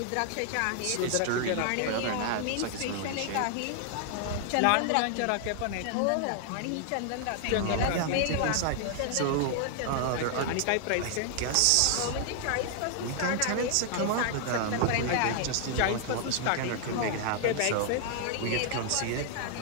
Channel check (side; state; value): both; different; correlation 0.00